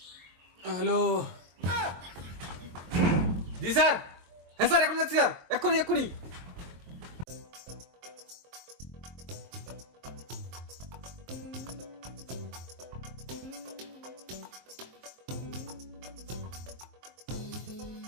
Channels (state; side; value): late; left; 23 ms